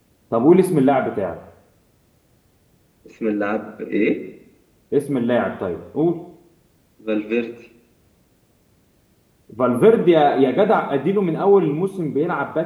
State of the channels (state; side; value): identical; both; correlation 1.00